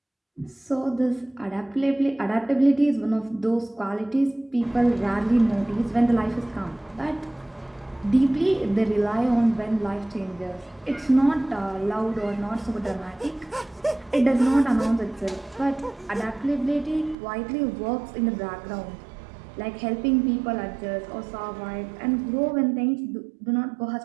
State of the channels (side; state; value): left; drops out; at 17.2 s